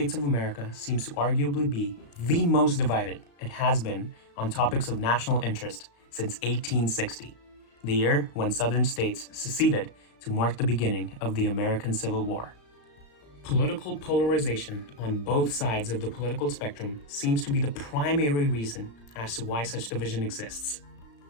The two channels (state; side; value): late; right; 35 ms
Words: of America seems to arguably be the most divided it has been on topics of national interest since 1860, the year when southern states seceded to mark the beginning of the American Civil War. Political polarization on both sides of the political spectrum seems to be the primary reason as to why such division exists.